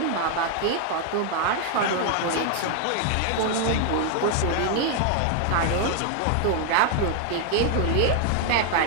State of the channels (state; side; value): different; both; correlation 0.00